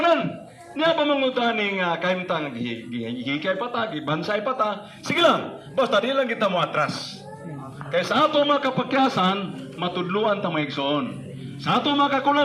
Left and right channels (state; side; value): identical; both; correlation 1.00